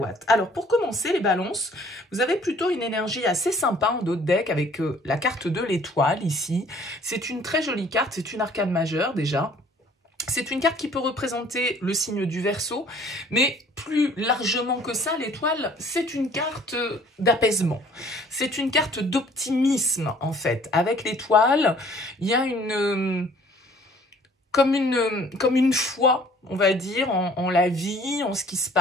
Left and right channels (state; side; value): normal; both; correlation 0.55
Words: Alors pour commencer les balances, vous avez plutôt une énergie assez sympa en dos de deck avec la carte de l'étoile ici. C'est une très jolie carte, c'est une arcane majeure déjà. C'est une carte qui peut représenter le signe du Verseau, mais plus largement que ça, l'étoile, c'est une carte d'apaisement. C'est une carte d'optimisme, en fait. Avec l'étoile, il y a comme une foi, on va dire, en la vie, en ce qui se